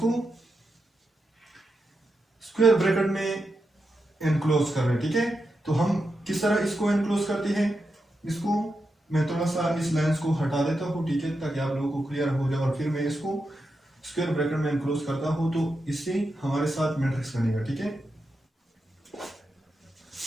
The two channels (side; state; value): both; normal; correlation 0.87